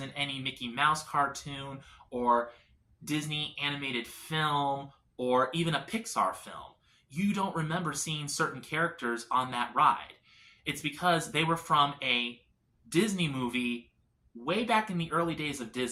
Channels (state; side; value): identical; both; correlation 1.00